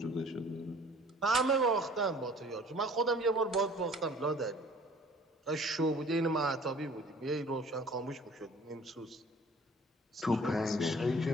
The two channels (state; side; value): normal; both; correlation 0.51